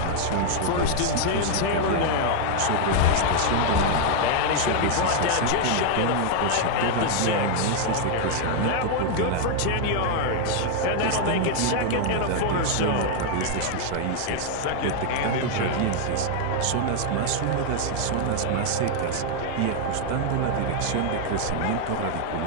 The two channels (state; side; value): different; both; correlation 0.00